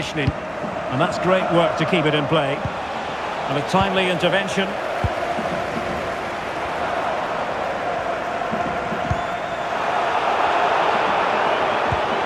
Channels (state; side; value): identical; both; correlation 1.00